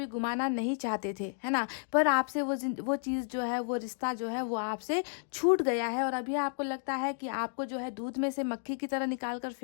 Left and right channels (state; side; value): silent; right; digital silence